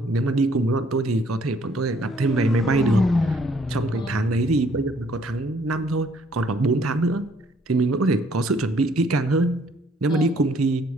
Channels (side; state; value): both; normal; correlation 0.63